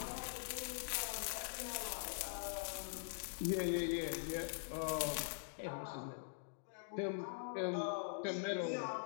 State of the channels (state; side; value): silent; right; digital silence